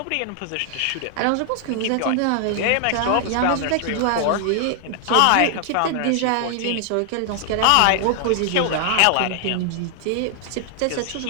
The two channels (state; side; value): different; both; correlation 0.00